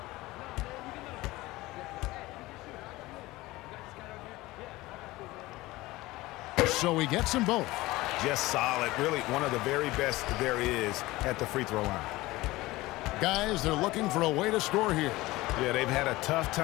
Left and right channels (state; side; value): quieter; right; 19.3 dB